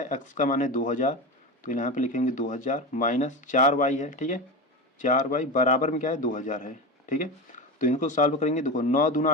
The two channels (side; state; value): both; normal; correlation 0.22